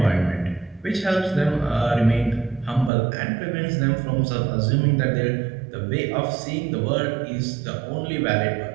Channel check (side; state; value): left; drops out; at 2.9 s